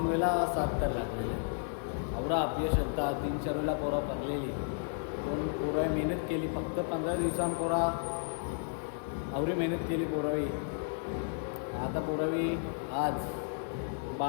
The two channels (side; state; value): right; silent; 56 dB below the other